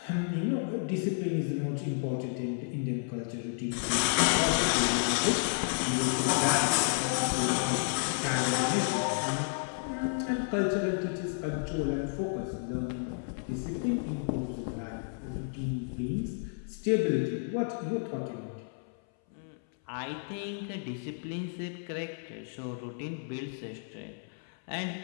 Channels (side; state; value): right; silent; 57 dB below the other